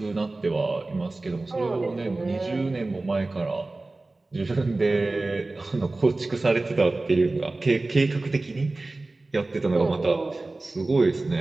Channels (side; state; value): left; quieter; 3.1 dB